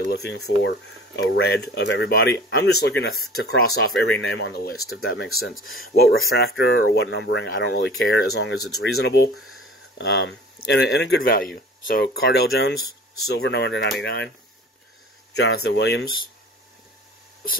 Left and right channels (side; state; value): both; normal; correlation 0.44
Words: looking for a red of everybody. I'm just looking to cross off every name on the list, if that makes sense. What refractor or what numbering, I don't really care, as long as it's reasonable and a good value. So, Cardale Jones, silver, number /99. Jonathan Williams,